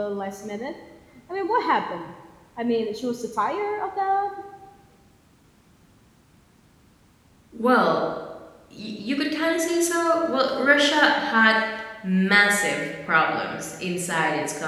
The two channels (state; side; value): identical; both; correlation 1.00